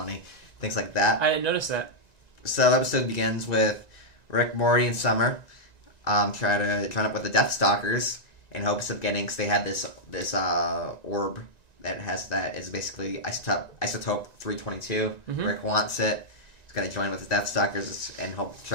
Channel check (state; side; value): late; right; 1.9 ms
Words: Things like that. I didn't notice that. So the episode begins with Rick, Morty, and Summer try to join up with the Death Stalkers in hopes of getting. Cause they have this orb that is basically isotope 322. Mm-hmm. Rick wants it. He's gonna join with the Death Stalkers and hope